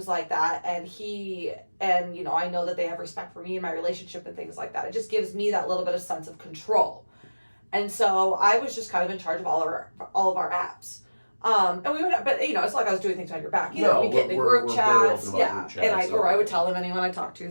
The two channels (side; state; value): both; inverted; correlation -1.00